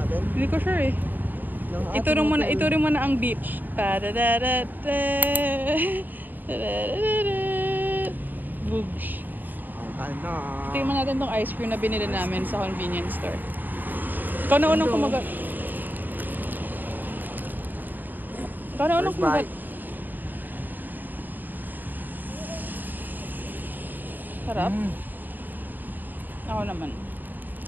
Hindi ko sure eh. Ituring mo na ang beach. Boogs. Ano? Tingnan natin tong ice cream na binili namin sa convenience store. Ikaw na unang kumagat. Sarap. Ako naman.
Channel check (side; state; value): left; late; 0.089 ms